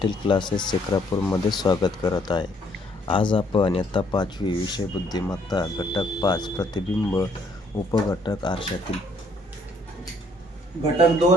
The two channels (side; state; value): both; normal; correlation 0.66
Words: क्लासेस सेक्रापूरमध्ये स्वागत करत आहे। आज आपण इयत्ता 5वी विषय बुद्धिमत्ता घटक 5 प्रतिबिंब उपघटक आरशातील घटक